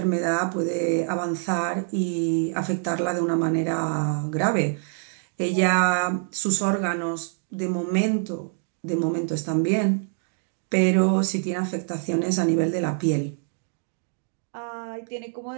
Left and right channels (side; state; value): left; silent; digital silence